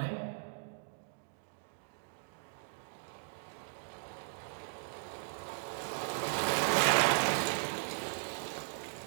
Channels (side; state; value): left; silent; digital silence